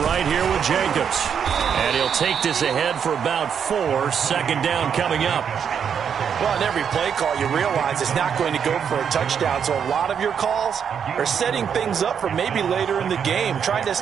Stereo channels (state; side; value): quieter; left; 7.6 dB